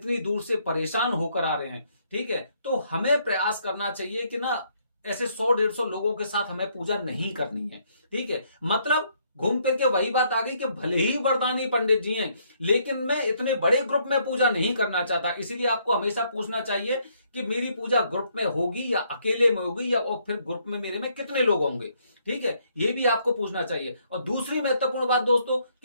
दूर से परेशान होकर आ रहे हैं। ठीक है, तो हमें प्रयास करना चाहिए कि ना ऐसे 100-150 लोगों के साथ हमें पूजा नहीं करनी है। ठीक है, मतलब घूम फिर के वही बात आ गई कि भले ही वरदानी पंडित जी हैं, लेकिन मैं इतने बड़े ग्रुप में पूजा नहीं करना चाहता। इसीलिए आपको हमेशा पूछना चाहिए कि मेरी पूजा ग्रुप में होगी या अकेले में होगी, या और फिर ग्रुप में मेरे में कितने लोग होंगे। ठीक है, ये भी आपको पूछना चाहिए। और दूसरी महत्वपूर्ण बात दोस्तों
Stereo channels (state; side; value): inverted; both; correlation -0.70